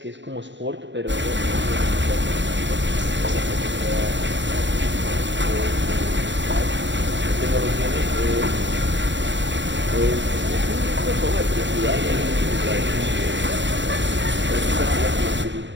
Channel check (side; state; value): left; late; 0.53 ms